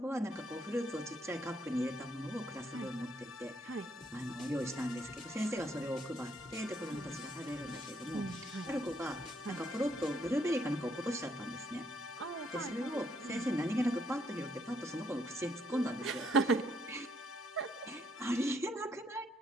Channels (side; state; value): both; normal; correlation 0.71